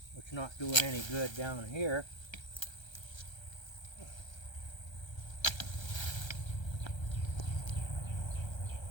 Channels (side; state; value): right; late; 1.3 ms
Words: which is not doing any good down here.